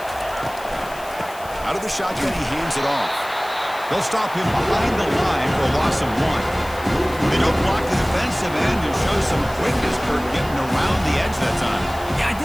Out of the shotgun, he hands it off. They'll stop him behind the line for a loss of 1. They don't block the defensive end and show some quickness, Kirk, getting around the edge that time. Yeah,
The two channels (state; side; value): noise; left; hiss, 18 dB below the sound